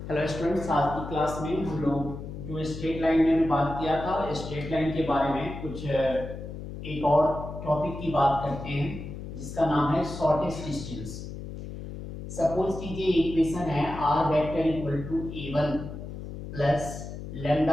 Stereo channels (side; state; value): left; noise; hum, 9 dB below the sound